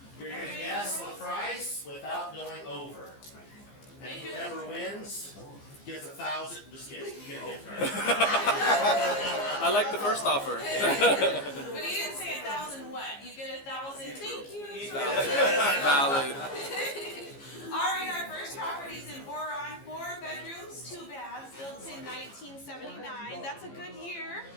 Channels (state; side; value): late; right; 15 ms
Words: You're going to guess the price without going over. And whoever wins gets 1,000. Just kidding. You get a gift card. I like the first offer. But you didn't say 1,000 what? You get 1,000. Thank you. Valid. All right, our first property is in Boron, 4 bedrooms, 2 baths, built in 1979. That's a good year.